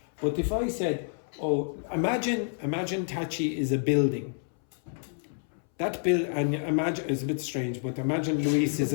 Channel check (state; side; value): silent; right; 59 dB below the other